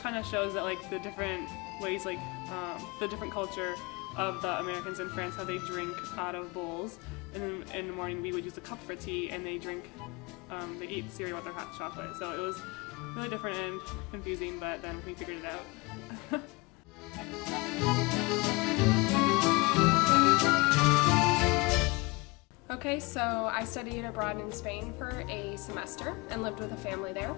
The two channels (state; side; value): quieter; right; 25.7 dB